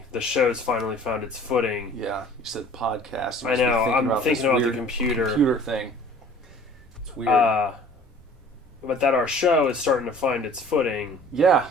show's finally found its footing. Yeah, you said podcast. I know. I'm thinking about the computer thing. It's weird. But that our show is starting to find its footing. Yeah.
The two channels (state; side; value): normal; both; correlation 0.49